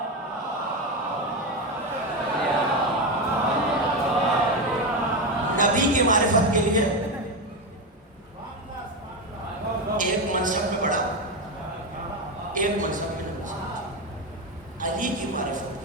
نبی کی معرفت کے لیے ایک منصب میں بڑا, ایک منصب میں نبی. علی کی معرفت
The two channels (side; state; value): both; normal; correlation 0.13